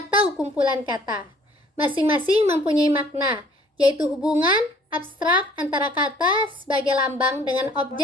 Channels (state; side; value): normal; both; correlation 0.56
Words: kumpulan kata. Masing-masing mempunyai makna, yaitu hubungan abstrak antara kata sebagai lambang dengan